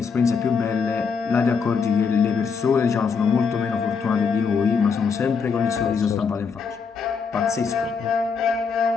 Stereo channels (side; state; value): right; quieter; 5.6 dB